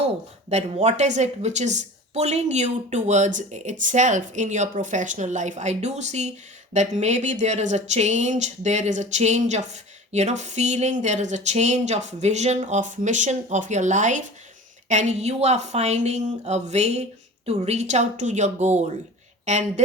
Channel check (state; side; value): normal; both; correlation 0.38